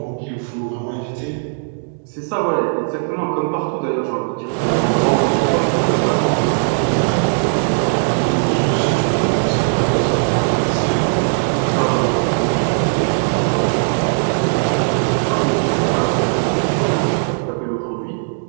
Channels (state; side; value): silent; left; digital silence